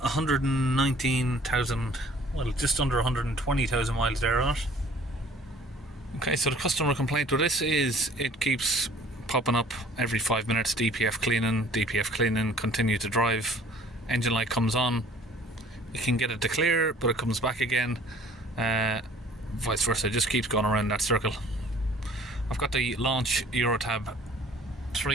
119,000, well, just under 120,000 miles there on it. Okay, so the customer complaint with this is it keeps popping up every 5 minutes, DPF cleaning, continue to drive, engine light comes on, you can get it to clear but it comes back again, vice versa, it just keeps going around that circle. I've got the Launch Eurotab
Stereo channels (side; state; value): both; normal; correlation 0.53